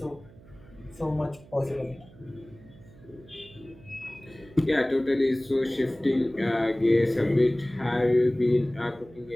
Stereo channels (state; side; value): noise; right; hum, 23 dB below the sound